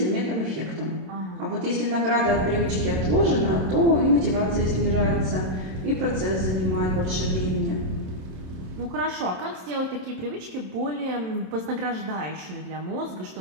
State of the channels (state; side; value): late; left; 27 ms